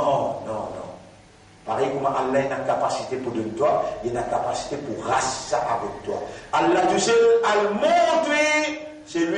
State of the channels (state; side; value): identical; both; correlation 1.00